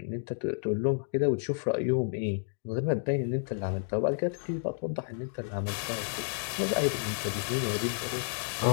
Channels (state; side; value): silent; right; digital silence